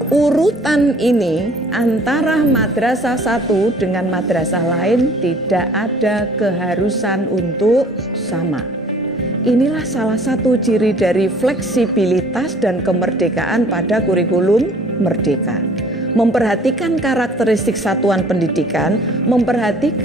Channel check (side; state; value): both; normal; correlation 0.54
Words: Urutan ini antara madrasah satu dengan madrasah lain tidak ada keharusan untuk sama. Inilah salah satu ciri dari fleksibilitas dan kemerdekaan pada kurikulum merdeka. Memperhatikan karakteristik satuan pendidikan,